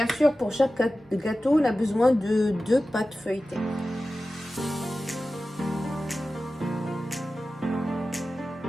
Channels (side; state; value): both; normal; correlation 0.95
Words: sûr, pour chaque gâteau, on a besoin de 2 pâtes feuilletées.